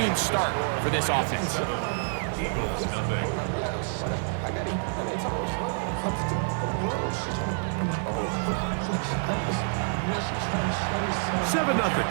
start for this offense.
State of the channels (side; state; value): left; silent; 60 dB below the other